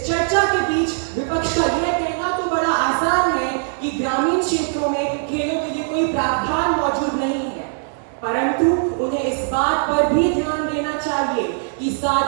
चर्चा के बीच विपक्ष का यह कहना तो बड़ा आसान है कि ग्रामीण क्षेत्रों में खेलों के लिए कोई प्रावधान मौजूद नहीं है, परंतु उन्हें इस बात पर भी ध्यान देना चाहिए कि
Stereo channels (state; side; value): silent; left; digital silence